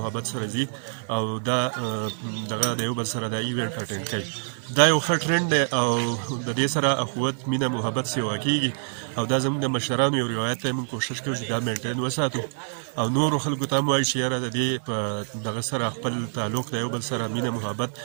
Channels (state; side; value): silent; left; 56 dB below the other